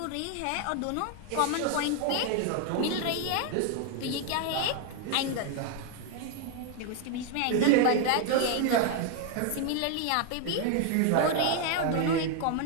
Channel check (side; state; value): both; different; correlation 0.01